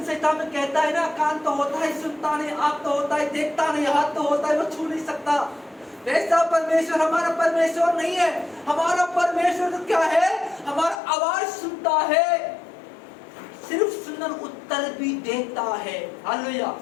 संहिता में कहता है ना, कान तो होता है सुनता नहीं, आंख तो होता है देखता नहीं, हाथ तो होता है वो छू नहीं सकता। वैसा परमेश्वर हमारा परमेश्वर नहीं है। हमारा परमेश्वर तो क्या है, हमारा आवाज सुनता है, सिर्फ सुनकर उत्तर भी देता है। हालेलुया।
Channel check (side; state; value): right; drops out; at 11.0 s